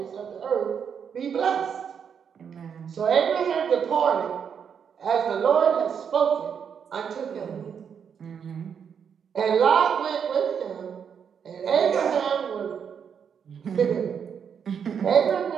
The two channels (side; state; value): left; quieter; 7.3 dB